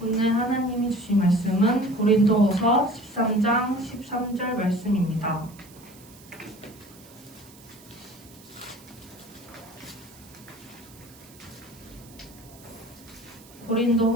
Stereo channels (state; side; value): noise; right; hiss, 23 dB below the sound